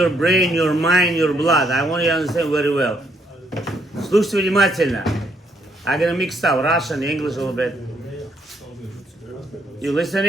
brain, your mind, your blood. I want you to understand very well. Слушайте внимательно. I'm gonna mix up Russian, English a little bit. You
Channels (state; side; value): normal; both; correlation 0.72